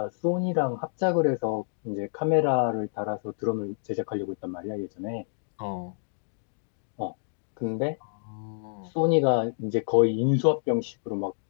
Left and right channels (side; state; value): right; silent; digital silence